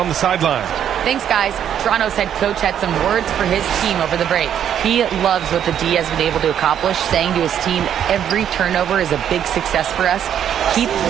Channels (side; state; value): left; quieter; 9.5 dB